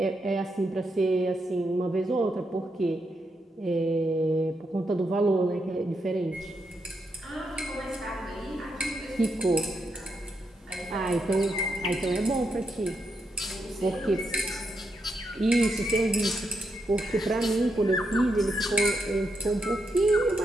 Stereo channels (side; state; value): both; normal; correlation 0.82